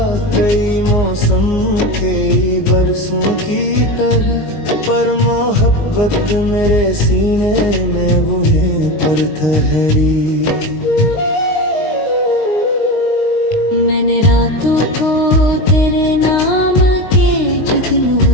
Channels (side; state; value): right; late; 19 ms